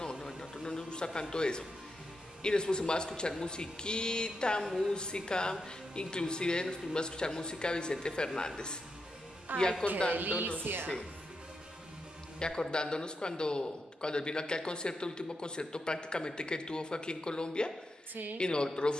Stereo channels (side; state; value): both; normal; correlation 0.85